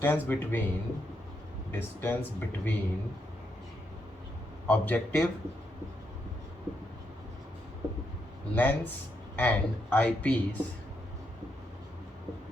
between objective lens and eyepiece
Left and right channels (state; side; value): normal; both; correlation 0.80